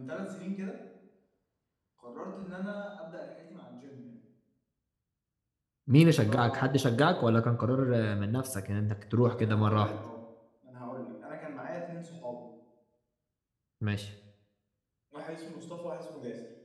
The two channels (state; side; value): identical; both; correlation 1.00